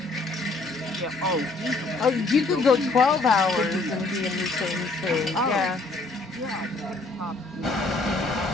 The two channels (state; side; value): quieter; right; 3.3 dB